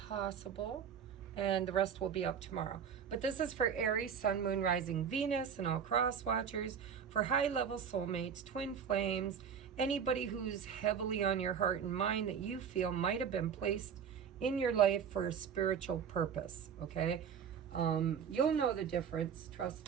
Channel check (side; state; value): left; quieter; 7.5 dB